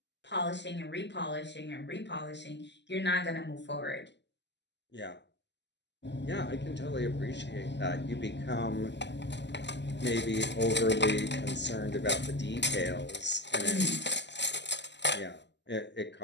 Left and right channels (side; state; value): right; late; 0.51 ms